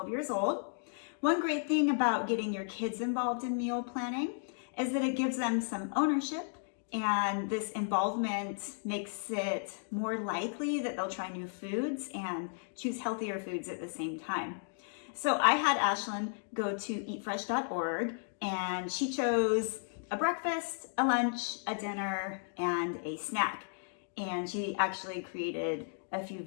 years old. One great thing about getting your kids involved in meal planning is that it gives them some ownership, and this involvement makes it more likely that they'll try new foods and choose healthier foods at the same time. So I had Ashlyn go to eatfresh.org, and she chose a breakfast, a lunch, a dinner, and a snack. And she actually created a few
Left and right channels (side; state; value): right; silent; digital silence